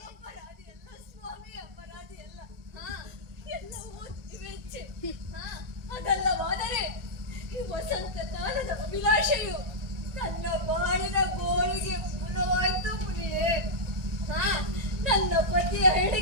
ಅಪರಾಧಿಯಲ್ಲ ಸ್ವಾಮಿ ಅಪರಾಧಿಯಲ್ಲ. ಎಲ್ಲವೂ ತಿವೆಚ್ಚೆ. ಅದಲ್ಲವಾದರೆ ಈ ವಸಂತ ಕಾಲದ ಅಭಿಲಾಷೆಯು ನನ್ನ ಬಾಳಿನ ಗೋಳಿಗೆ ಮೂಲವಾಯ್ತು ಮುನಿಯೇ. ನನ್ನ ಪತಿಯ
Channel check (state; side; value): late; left; 1.9 ms